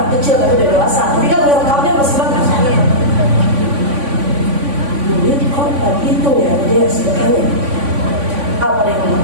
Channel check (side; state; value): left; late; 3.5 ms